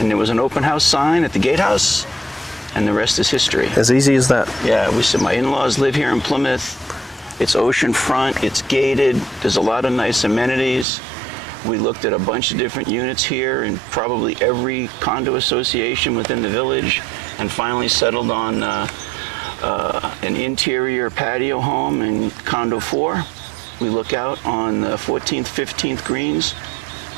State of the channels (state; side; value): drops out; left; at 10.9 s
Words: there was an open house sign at the gatehouse, and the rest is history. As easy as that. Yeah, we said, my in-laws live here in Plymouth. It's oceanfront, it's gated, there's a lot of nice amenities. We looked at a bunch of different units here and probably every condo association within the village, and finally settled on an interior patio home in Condo 4. We look out on the 14th, 15th greens,